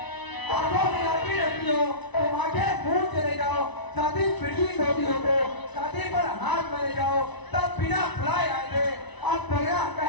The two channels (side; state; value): right; late; 1.0 ms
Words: तुम आगे मुंह चले जाओ शादी पिटी होती हो तो शादी पर हाथ चले जाओ तब बिना बुलाए आए थे आप बगैर